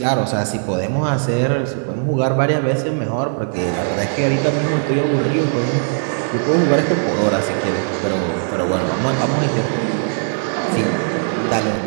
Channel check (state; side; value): silent; left; 67 dB below the other